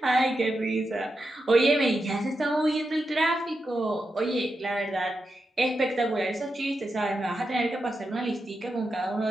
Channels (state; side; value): normal; both; correlation 0.87